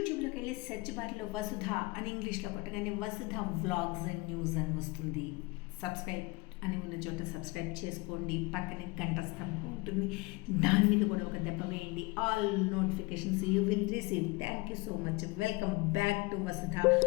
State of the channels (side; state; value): right; quieter; 24.6 dB